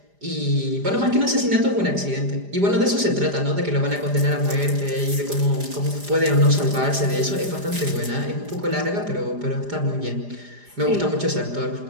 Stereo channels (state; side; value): late; left; 4.9 ms